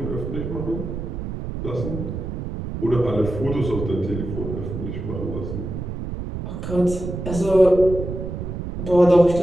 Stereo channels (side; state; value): right; noise; rumble, 6 dB below the sound